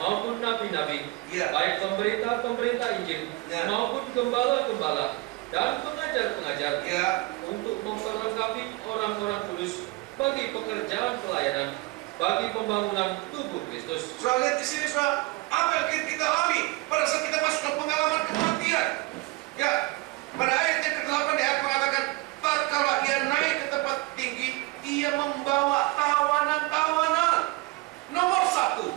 nabi-nabi, Ya. baik pemberita-pemberita Injil Ya. maupun gembala-gembala dan pengajar-pengajar, Ya. untuk memperlengkapi orang-orang kudus bagi pekerjaan pelayanan, bagi pembangunan tubuh Kristus. Saudara lihat di sini, saudara, apa yang kita alami pada saat kita masuk ke pengalaman kematian. Ya, pada ayat yang ke-8 dia mengatakan, tatkala ia naik ke tempat tinggi, ia membawa tawanan-tawanan. Nomor satu,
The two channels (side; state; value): left; quieter; 22.4 dB